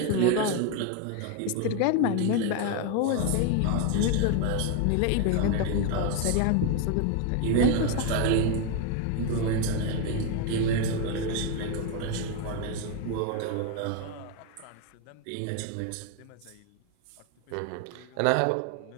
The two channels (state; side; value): different; both; correlation 0.01